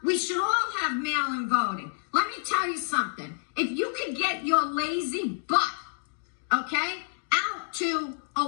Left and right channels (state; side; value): silent; right; digital silence